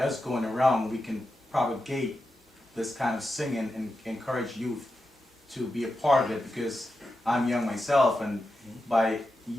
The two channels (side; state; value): both; normal; correlation 0.89